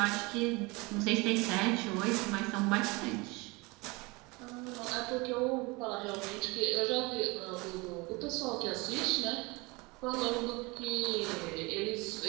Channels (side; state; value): left; quieter; 25.5 dB